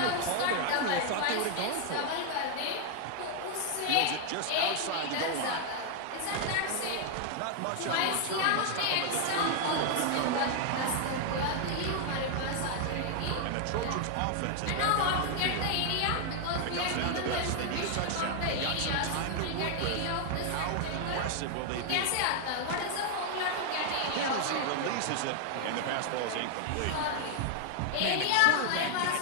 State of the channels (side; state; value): both; different; correlation 0.00